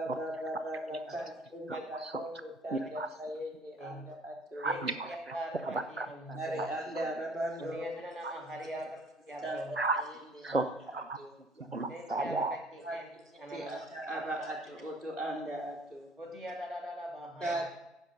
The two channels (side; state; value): both; normal; correlation 0.55